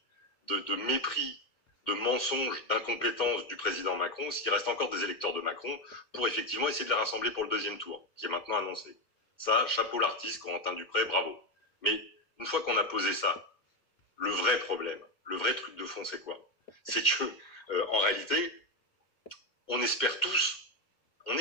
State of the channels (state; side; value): late; right; 2.2 ms